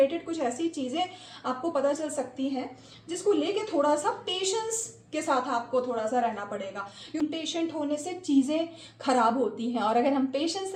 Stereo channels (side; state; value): both; identical; correlation 1.00